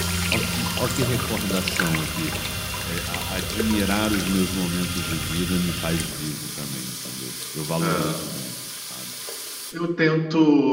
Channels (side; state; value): both; identical; correlation 1.00